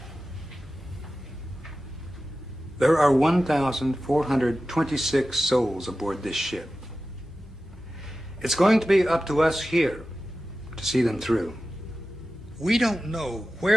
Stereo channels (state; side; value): normal; both; correlation 0.94